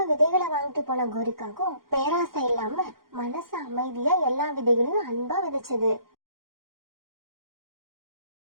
விதைகளை வாங்கிட்டு போன கோரிக்காகும் பேராசை இல்லாம மனசு அமைதியா எல்லா விதைகளையும் அன்பா விதைச்சது.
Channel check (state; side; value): late; left; 0.92 ms